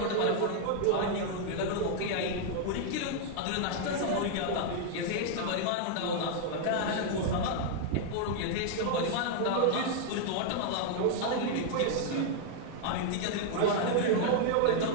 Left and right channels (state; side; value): different; both; correlation 0.00